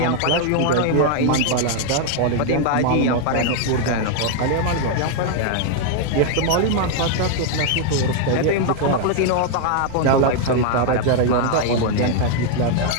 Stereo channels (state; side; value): different; both; correlation 0.00